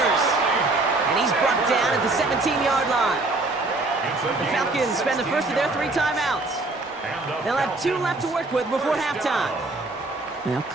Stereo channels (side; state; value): left; quieter; 3.1 dB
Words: And he's brought down at the 17-yard line. The Falcons spend the first of their 3 timeouts. They'll have 2 left to work with before halftime. They'll